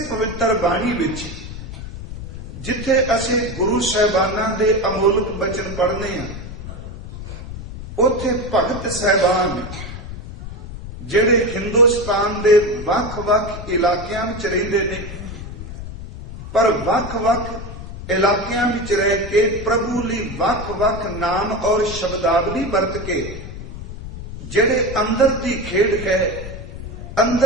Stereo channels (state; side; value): noise; left; rumble, 10 dB below the sound